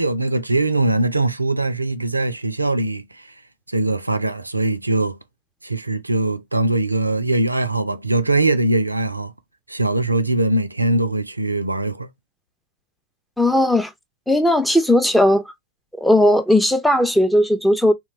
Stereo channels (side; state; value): both; normal; correlation 0.05